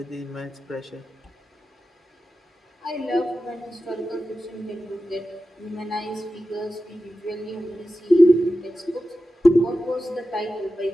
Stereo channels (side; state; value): both; normal; correlation 0.93